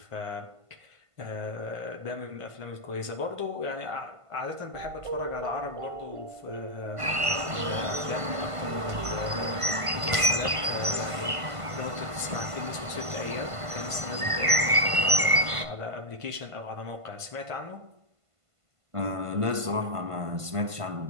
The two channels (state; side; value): late; left; 1.5 ms